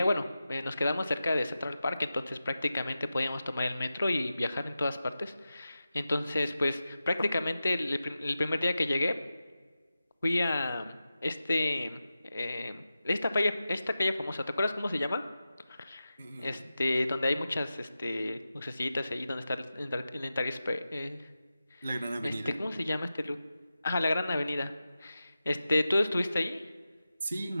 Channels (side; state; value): both; inverted; correlation -0.93